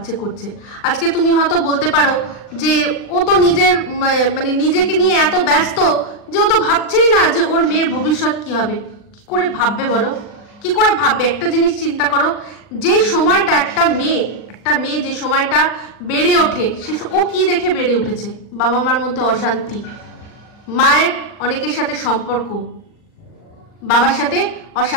করছে। আজকে তুমি হয়তো বলতে পারো যে ও তো নিজেকে নিয়ে এত ব্যস্ত যে ও তো ভাবছেই না যে ওর মেয়ের ভবিষ্যৎ কি হবে। কি করে ভাববে বলো, কি করে ভাববে? একটা জিনিস চিন্তা করো, যে সময়টা একটা মেয়ে যে সময়টা বেড়ে ওঠে, ও কি দেখে বেড়ে উঠেছে? বাবা মার মধ্যে অশান্তি, মায়ের অনেকের সাথে সম্পর্ক, বাবার সাথে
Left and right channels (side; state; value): right; late; 40 ms